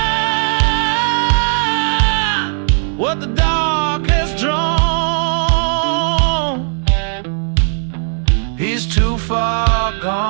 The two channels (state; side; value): silent; left; digital silence